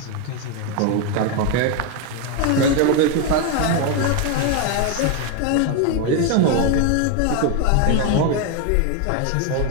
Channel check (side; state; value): both; different; correlation 0.01